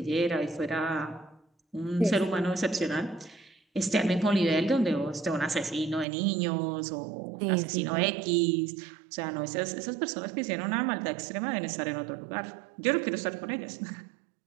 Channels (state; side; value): drops out; left; at 6.1 s